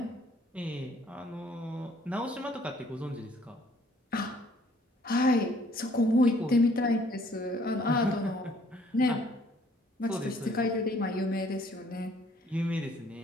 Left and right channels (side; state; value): both; normal; correlation 0.60